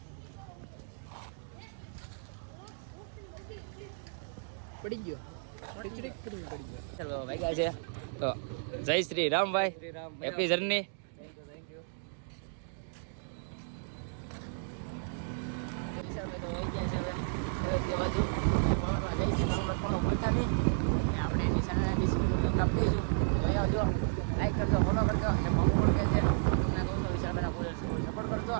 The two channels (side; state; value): left; silent; digital silence